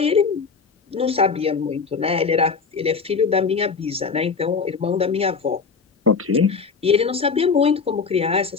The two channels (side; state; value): right; quieter; 5.3 dB